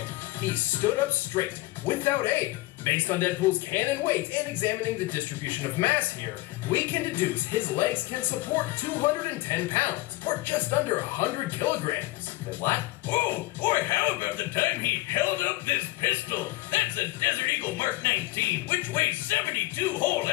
he stood up straight, without aid. Based on Deadpool's cannon weight and examining the distribution of mass here, we can deduce his legs can support 210 pounds, or just under 100 kilograms. What? Oh, or how about the time he held up this pistol? That's a Desert Eagle Mark 19, which weighs 72 whole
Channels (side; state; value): right; quieter; 19.7 dB